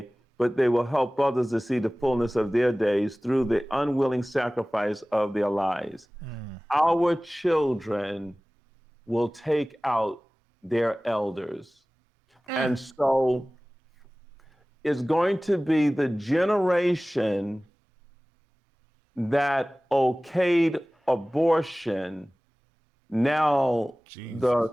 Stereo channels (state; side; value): normal; both; correlation 0.98